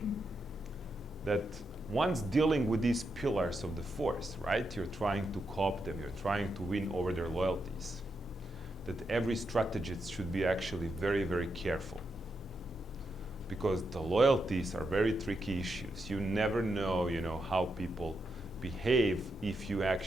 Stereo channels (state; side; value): normal; both; correlation 0.84